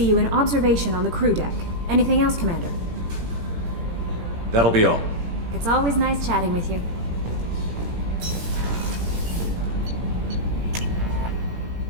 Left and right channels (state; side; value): late; left; 17 ms